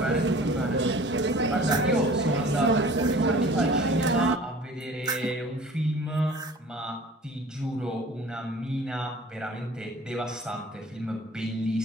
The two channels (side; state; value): both; normal; correlation 0.46